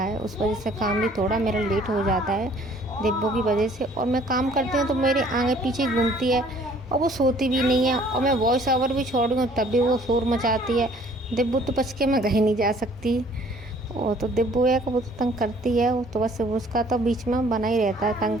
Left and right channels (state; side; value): normal; both; correlation 0.57